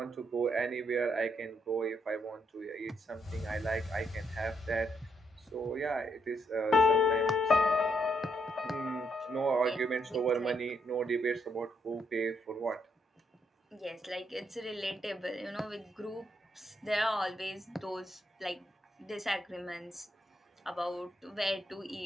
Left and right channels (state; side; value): normal; both; correlation 0.76